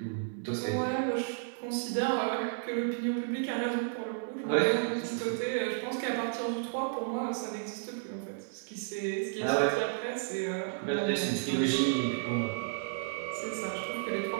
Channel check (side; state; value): left; silent; 56 dB below the other